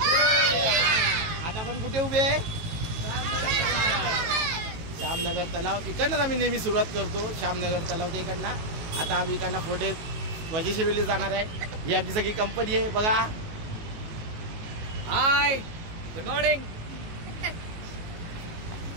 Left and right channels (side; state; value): left; late; 19 ms